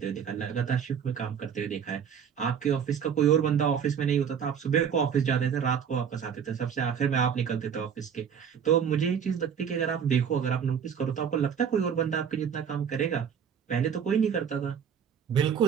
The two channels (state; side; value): quieter; left; 7.7 dB